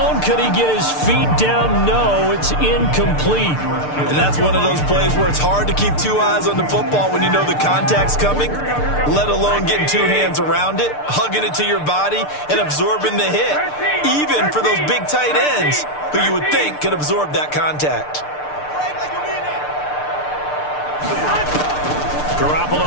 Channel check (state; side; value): late; right; 6.7 ms